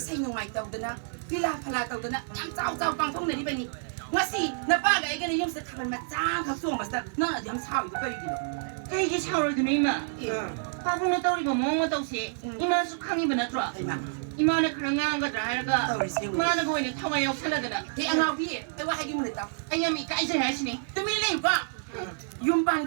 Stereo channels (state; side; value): silent; left; digital silence